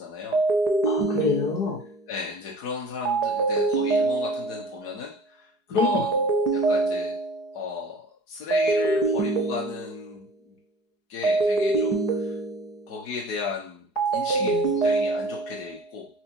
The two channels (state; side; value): late; right; 4.8 ms